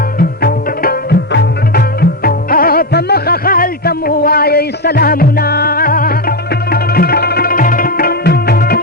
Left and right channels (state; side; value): normal; both; correlation 0.10